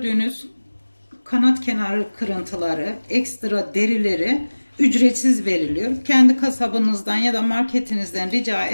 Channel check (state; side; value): inverted; both; correlation -1.00